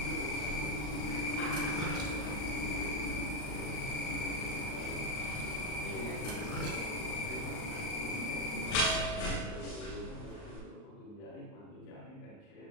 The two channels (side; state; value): right; late; 39 ms